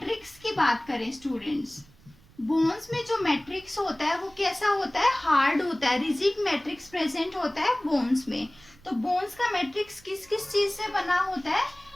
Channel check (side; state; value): right; noise; rumble, 26 dB below the sound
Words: की बात करें स्टूडेंट्स, बोन्स में जो मैट्रिक्स होता है वो कैसा होता है? हार्ड होता है। रिजिड मैट्रिक्स प्रेजेंट होता है बोन्स में। तो बोन्स का मैट्रिक्स किस किस चीज से बना होता है?